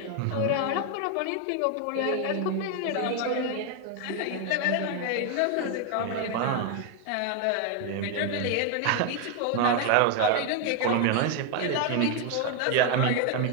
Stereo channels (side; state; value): both; different; correlation 0.01